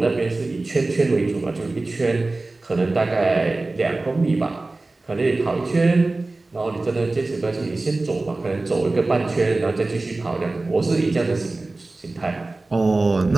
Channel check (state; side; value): quieter; left; 3.2 dB